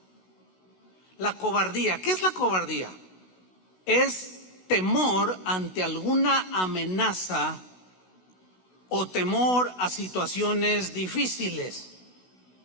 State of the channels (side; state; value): right; late; 16 ms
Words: La cobardía, ¿qué es la cobardía? Es temor ante alguna amenaza o temor a situaciones difíciles.